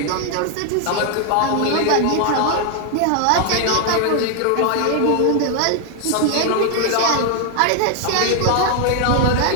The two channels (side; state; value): both; different; correlation 0.00